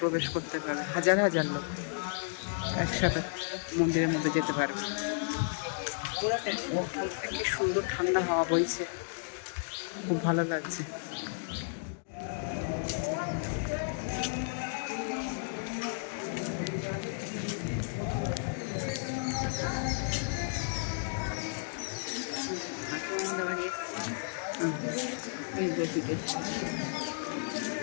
করতে পারবে, হাজার হাজার লোক একসাথে মন্দিরের মধ্যে যেতে পারবে। কি সুন্দর ঠান্ডা হাওয়া বইছে, খুব ভালো লাগছে।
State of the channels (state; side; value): silent; right; digital silence